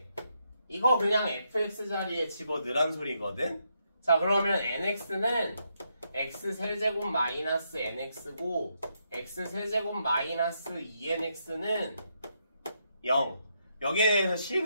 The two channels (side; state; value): both; inverted; correlation -0.79